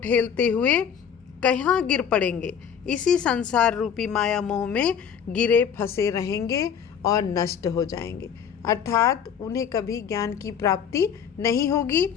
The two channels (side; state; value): right; quieter; 7.9 dB